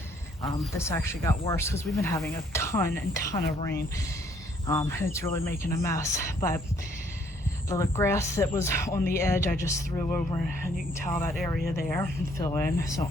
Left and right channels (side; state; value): both; normal; correlation 0.65